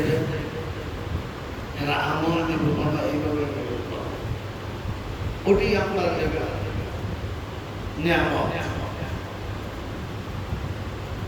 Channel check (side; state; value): both; identical; correlation 1.00